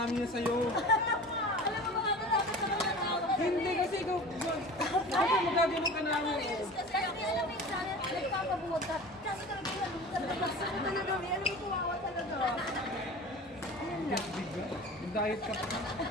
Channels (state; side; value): normal; both; correlation 0.37